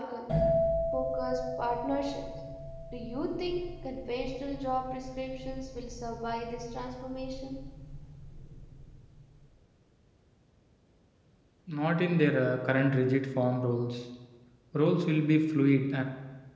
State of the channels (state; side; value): identical; both; correlation 1.00